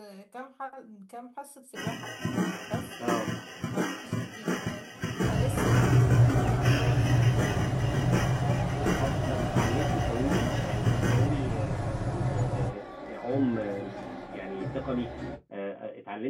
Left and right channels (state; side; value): identical; both; correlation 1.00